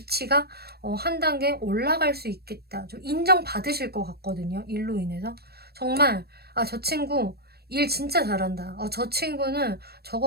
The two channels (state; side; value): late; left; 0.46 ms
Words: 한 단계 올라갈 수 있겠다. 좀 인정받으실 것 같거든요. 일로 인해서. 정말 저 친구 일 진짜 잘한다. 저 친구는